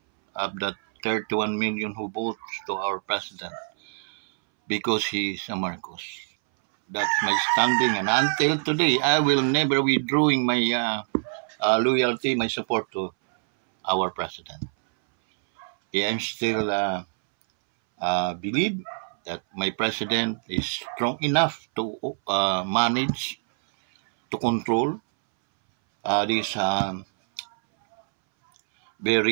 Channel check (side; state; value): left; silent; 62 dB below the other